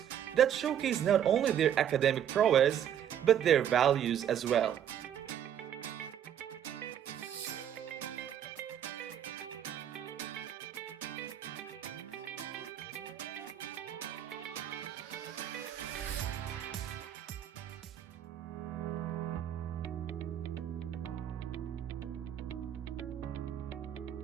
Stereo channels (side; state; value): left; quieter; 9.8 dB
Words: that showcase not only their academic prowess, but their values as well.